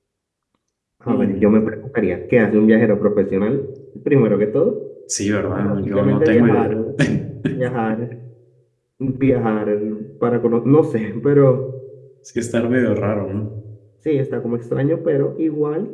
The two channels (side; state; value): both; identical; correlation 1.00